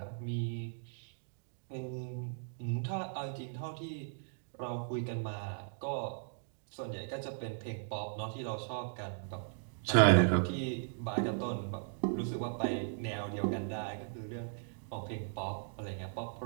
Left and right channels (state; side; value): silent; left; digital silence